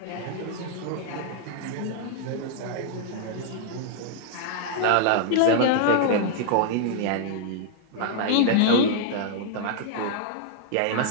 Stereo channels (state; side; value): different; both; correlation -0.01